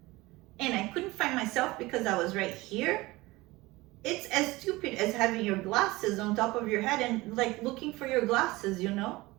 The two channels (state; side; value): quieter; left; 20.7 dB